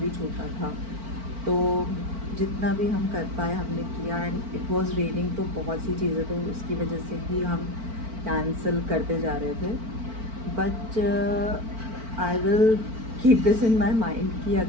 छोटा था, तो जितना भी हम कर पाए हमने किया एंड इट वाज रेनिंग, तो बहुत सी चीज़ें तो उसकी वजह से ही हम कैंसिल करते जा रहे थे। But I will keep this in my mind कि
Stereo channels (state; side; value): late; left; 4.5 ms